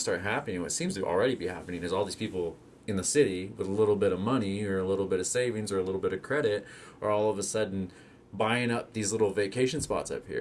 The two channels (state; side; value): identical; both; correlation 1.00